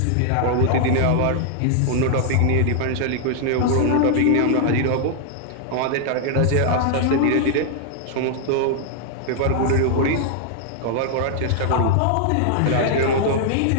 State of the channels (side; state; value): both; different; correlation 0.00